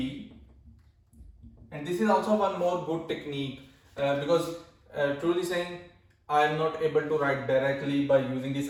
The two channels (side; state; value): both; identical; correlation 1.00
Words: and this is also one more good technique because truly saying I am not able to write directly by using this.